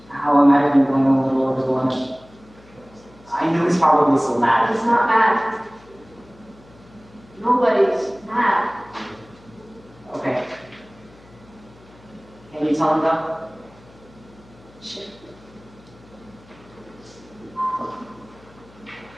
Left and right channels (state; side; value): noise; left; hum, 25 dB below the sound